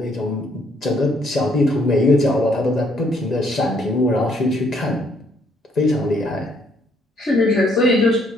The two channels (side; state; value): both; normal; correlation 0.68